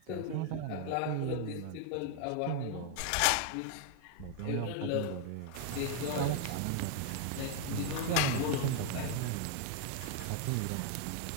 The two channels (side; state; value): both; different; correlation 0.00